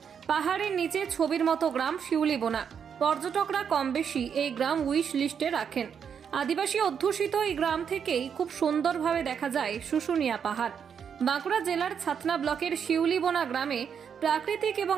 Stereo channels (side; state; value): left; quieter; 7.4 dB